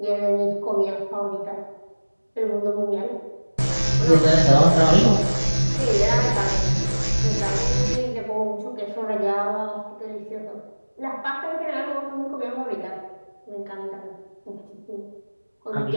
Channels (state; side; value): inverted; both; correlation -1.00